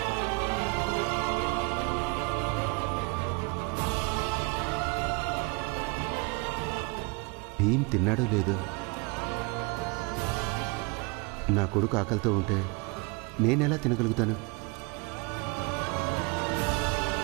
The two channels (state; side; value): quieter; left; 28.5 dB